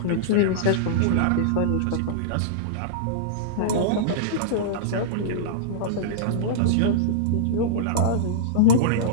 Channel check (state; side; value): different; both; correlation -0.03